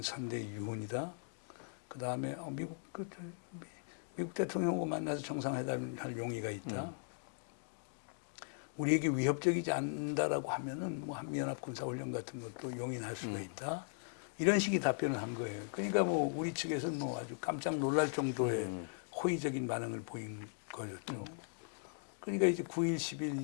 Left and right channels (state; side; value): silent; right; digital silence